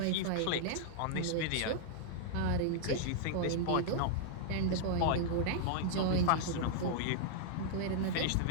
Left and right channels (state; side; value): different; both; correlation -0.01